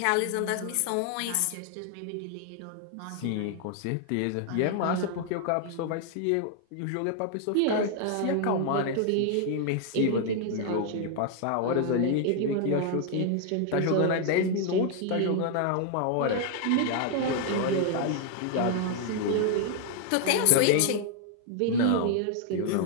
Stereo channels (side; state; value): both; different; correlation 0.00